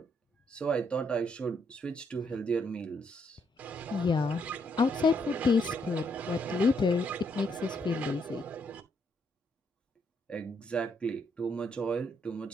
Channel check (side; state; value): both; normal; correlation 0.74